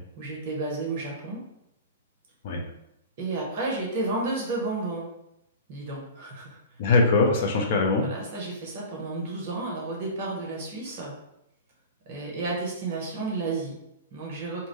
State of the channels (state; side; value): inverted; both; correlation -0.35